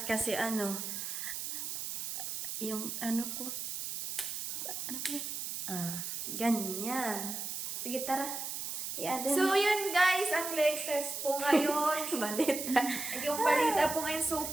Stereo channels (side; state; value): right; noise; hiss, 5 dB below the sound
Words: kasi yung ano ko ganyan. Sige tara. So yun guys, ang latest po ngayon. Balita. Yung balita po ngayon,